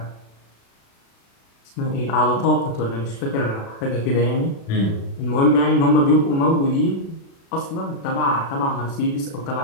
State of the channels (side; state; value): right; late; 36 ms